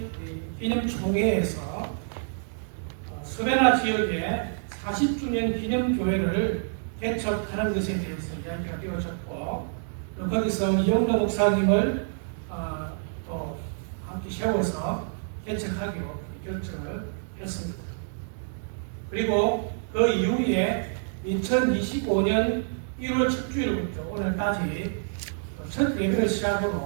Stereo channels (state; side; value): silent; left; digital silence